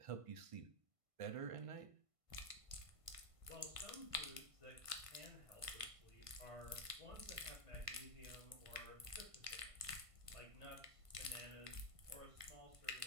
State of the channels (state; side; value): late; left; 1.5 ms